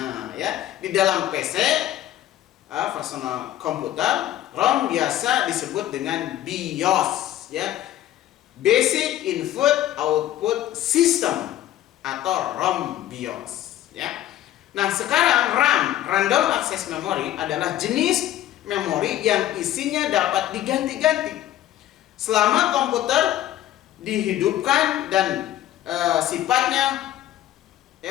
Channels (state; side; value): quieter; right; 13.2 dB